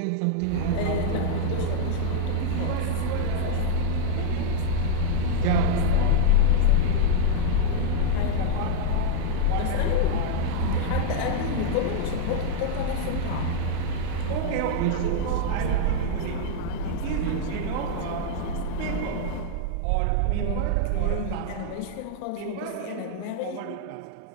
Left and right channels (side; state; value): both; different; correlation -0.01